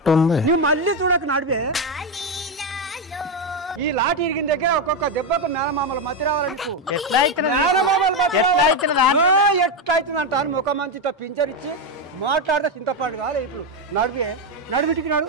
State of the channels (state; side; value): normal; both; correlation 0.08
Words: నువ్వు మళ్ళీ చూడక నడివే ఈ లాటి ఇరిగిన దగ్గర ఒక్కొక్క దెబ్బకు మేనమామల మతి రావాలి నీకు ఎట్లయితుంది అంటారు ముఖ మంచితో పించరిచ్చి మాట్లాడితే చింతపండు కావాలి ఇప్పుడు నడువింటికి